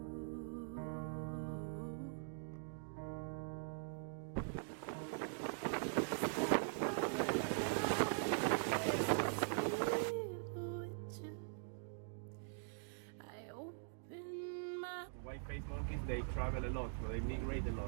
I open my White-faced monkeys, they travel a lot, so they migrate a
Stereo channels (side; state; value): left; silent; digital silence